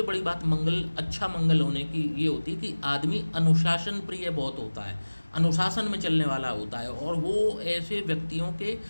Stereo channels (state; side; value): inverted; both; correlation -1.00